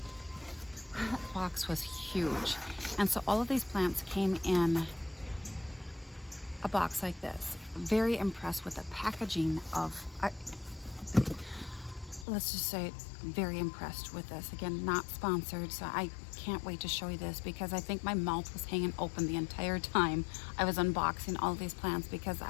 The box was huge. And so all of these plants came in a box like this. Very impressed with the packaging of, let's just say, very impressed with this. Again, not sponsored, so I can't wait to show you this because I think my mouth was hanging open the entire time I was unboxing all these plants because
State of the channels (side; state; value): right; drops out; at 12.2 s